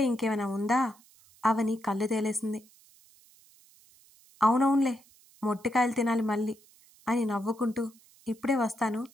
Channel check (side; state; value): right; noise; hiss, 28 dB below the sound